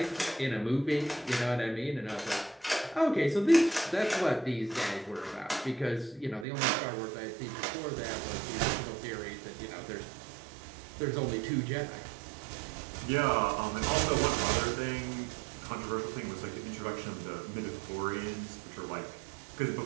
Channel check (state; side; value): drops out; left; at 6.5 s